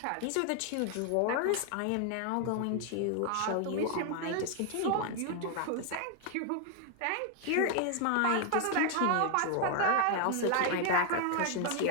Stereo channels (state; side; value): different; both; correlation 0.00